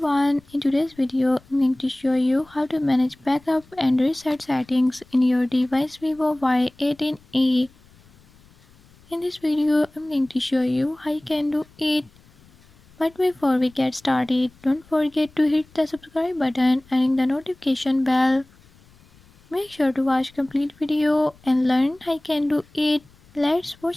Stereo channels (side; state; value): left; noise; rumble, 28 dB below the sound